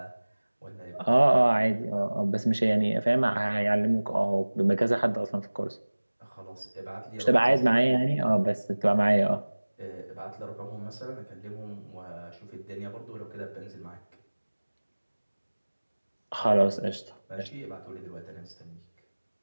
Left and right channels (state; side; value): inverted; both; correlation -1.00